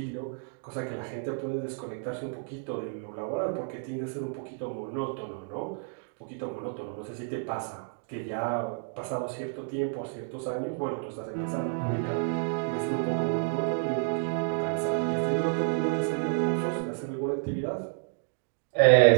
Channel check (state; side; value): silent; left; 58 dB below the other